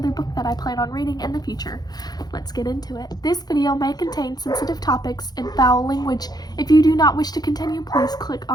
book that I plan on reading in the future. Let's get into it. This video may contain sensitive topics and foul language. If you do not wish to continue, please click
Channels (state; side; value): late; right; 0.19 ms